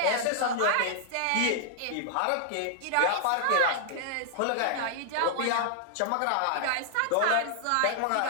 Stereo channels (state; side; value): different; both; correlation -0.01